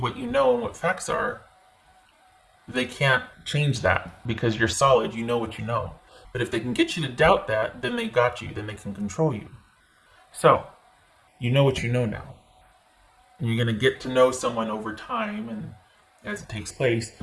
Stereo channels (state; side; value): identical; both; correlation 1.00